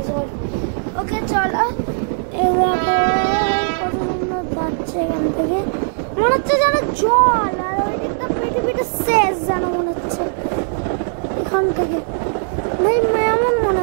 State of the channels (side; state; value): left; silent; digital silence